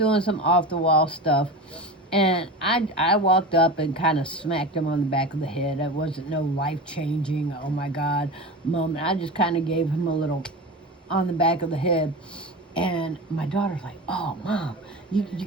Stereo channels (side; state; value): both; normal; correlation 0.28